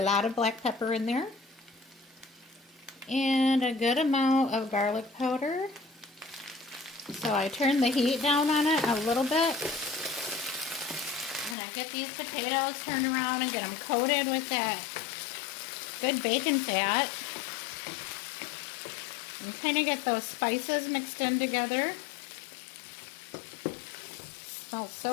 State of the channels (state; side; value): drops out; right; at 11.6 s